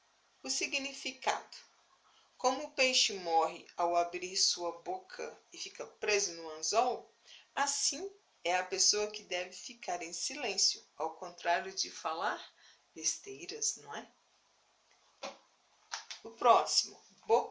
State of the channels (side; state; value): both; identical; correlation 1.00